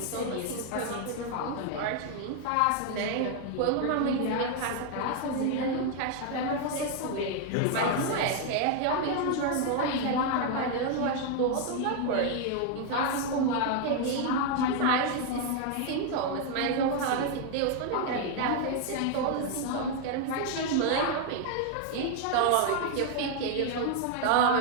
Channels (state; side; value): different; both; correlation 0.01